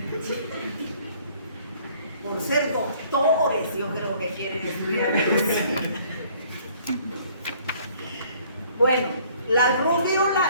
Por ser doctores, yo creo que quieren estudiar medicina. Bueno, la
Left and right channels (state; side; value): inverted; both; correlation -0.58